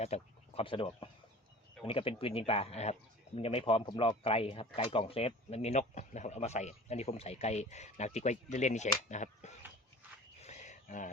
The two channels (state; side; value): normal; both; correlation 0.41